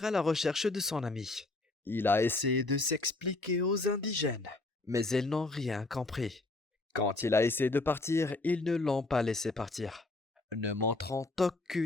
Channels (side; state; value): right; quieter; 3.1 dB